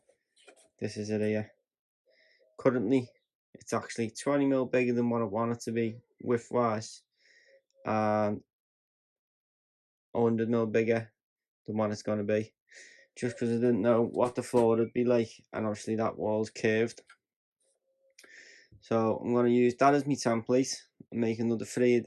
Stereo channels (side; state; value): both; identical; correlation 1.00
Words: This is it here. Currently it's actually 20mm bigger than what I want it to be width wise, and 100mm bigger than what it's going to be, just because I didn't know what the floor would be like, and obviously that wall's curved. So I'm going to use that as my template and make another 3 of